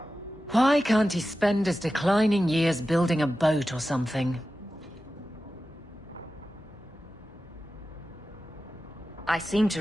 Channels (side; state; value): both; normal; correlation 0.93